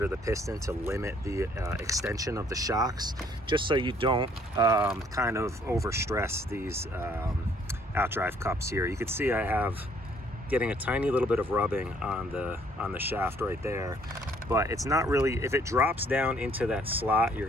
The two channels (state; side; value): normal; both; correlation 0.62